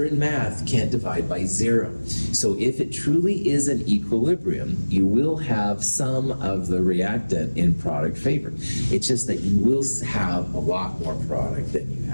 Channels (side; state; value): both; inverted; correlation -1.00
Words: in math, you can't divide by 0. So if it truly is an equilibrium, you will have some of the reactant in product favor. It's just that you will have a lot more product than you